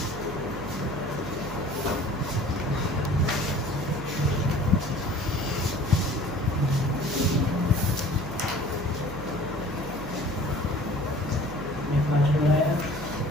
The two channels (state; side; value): noise; right; hum, 10 dB below the sound